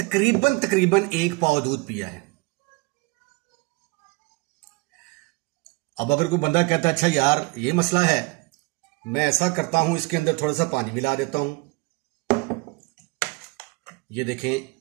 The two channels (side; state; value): left; quieter; 25.9 dB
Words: 1 पाव दूध पिया है। अब अगर कोई बंदा कहता है अच्छा यार ये मसला है, मैं ऐसा करता हूं, इसके अंदर थोड़ा सा पानी मिला देता हूं। ये देखें,